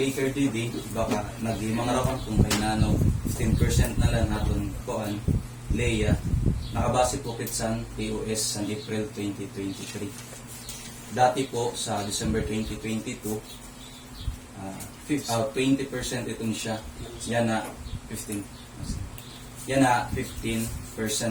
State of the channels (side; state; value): both; identical; correlation 1.00